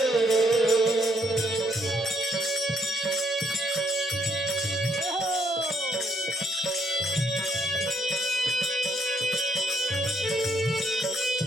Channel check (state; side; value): normal; both; correlation 0.70